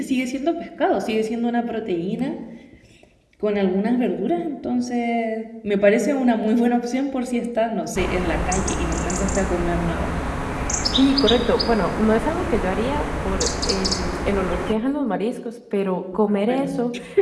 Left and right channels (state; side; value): identical; both; correlation 1.00